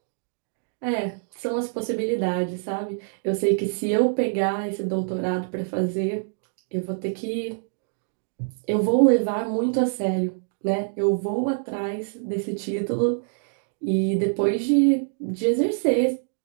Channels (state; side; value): silent; left; digital silence